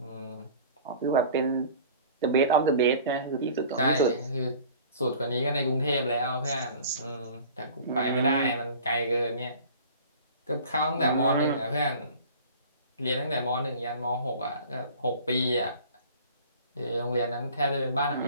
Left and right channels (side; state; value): both; inverted; correlation -0.45